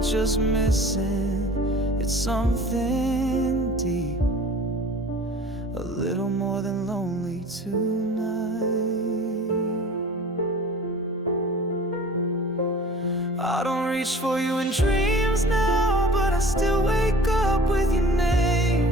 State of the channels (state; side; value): normal; both; correlation 0.44